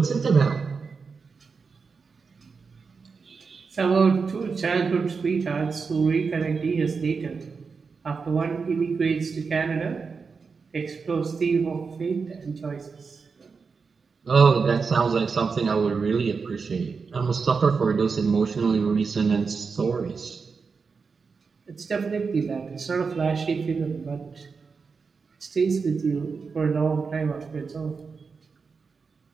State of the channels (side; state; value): left; quieter; 5.1 dB